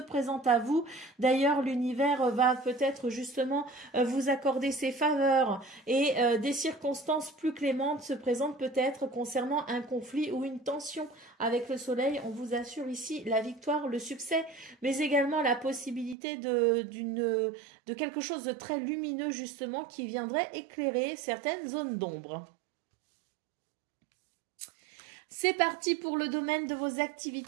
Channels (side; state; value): left; drops out; at 16.2 s